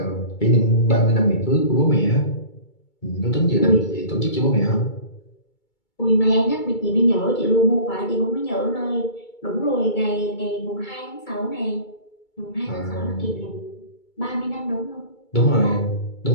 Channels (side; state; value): right; late; 2.3 ms